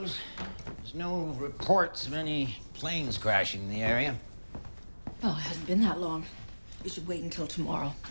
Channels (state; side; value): inverted; both; correlation -1.00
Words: There's no reports of any planes crashing in the area. Well, it hasn't been that long. We should wait until tomorrow.